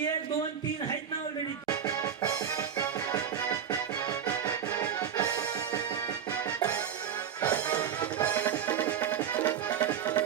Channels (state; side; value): quieter; left; 8.4 dB